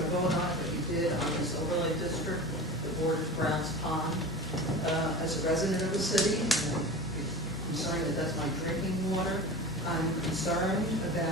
to vote on it, but you did on this overlay district that borders Browns Pond. As a resident of the city, I'm concerned that that's my drinking water. I'm concerned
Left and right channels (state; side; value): noise; right; hum, 28 dB below the sound